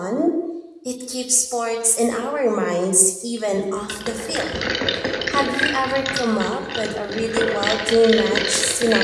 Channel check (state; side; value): identical; both; correlation 1.00